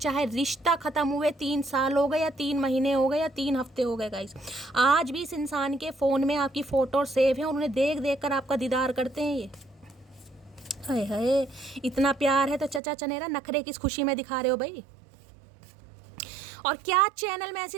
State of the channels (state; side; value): drops out; left; at 12.8 s